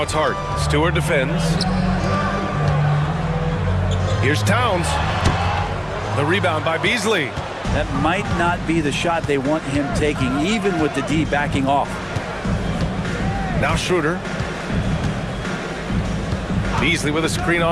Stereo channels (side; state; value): both; identical; correlation 1.00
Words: it's Hart. Stewart defends. Here's Towns. The rebound by Beasley. That might not be the shot they want him taking, even with the D backing off. Now Schroeder. Beasley with a screen